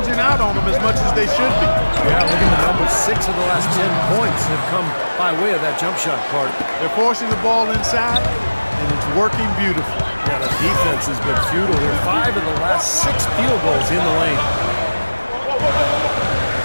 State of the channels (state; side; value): inverted; both; correlation -1.00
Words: out on them as much as they should be. Yeah, look at the numbers. 6 of the last 10 points have come by way of that jump shot part. They're forcing the ball inside, and it's working beautifully. Yeah, the defense has been futile here. 5 of the last 6 field goals in the lane.